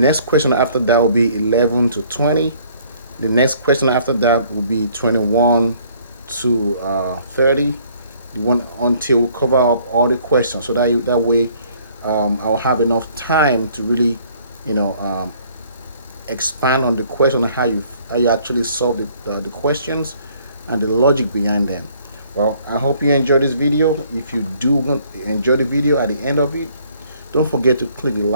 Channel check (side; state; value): both; inverted; correlation -0.60